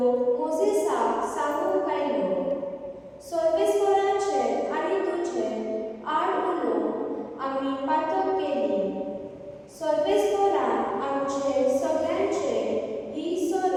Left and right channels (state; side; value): identical; both; correlation 1.00